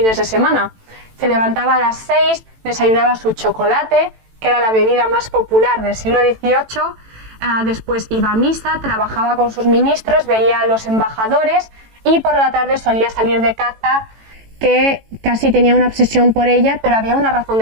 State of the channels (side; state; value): left; late; 18 ms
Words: de semana. Se levantaba a las 6, desayunaba su chocolate, que era la bebida más popular del siglo XVIII, después iba a misa, trabajaba con sus ministros, veía a los embajadores y por la tarde solía salir de caza, que casi tenía una obsesión por ella, pero había una razón